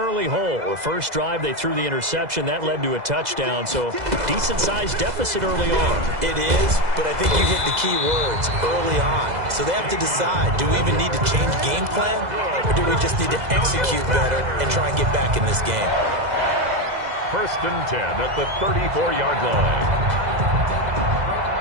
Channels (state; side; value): late; left; 2.0 ms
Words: hole. The first drive, they threw the interception. That led to a touchdown, so decent-sized deficit early on. It is, but I think you hit the key words, early on. So they have to decide, do we even need to change game plan, or do we just need to execute better and try and get back in this game? First and 10 at the 34-yard line.